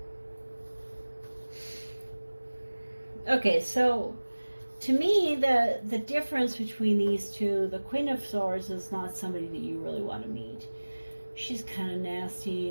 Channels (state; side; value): inverted; both; correlation -1.00